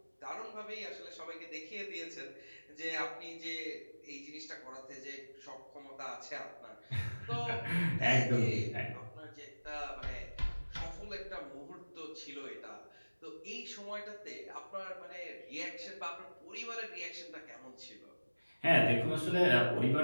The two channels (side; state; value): both; inverted; correlation -1.00